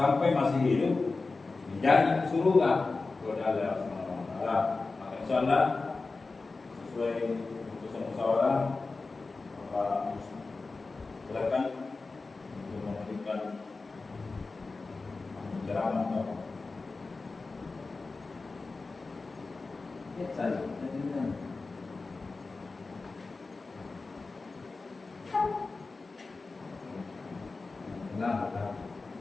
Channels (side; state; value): right; quieter; 3.8 dB